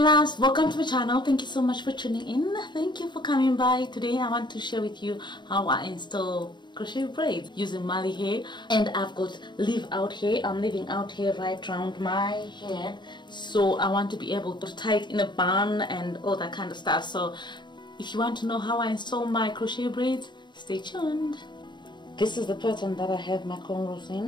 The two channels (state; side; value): late; right; 0.22 ms